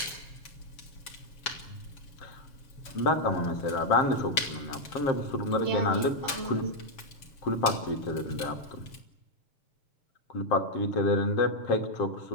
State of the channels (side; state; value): right; late; 7.0 ms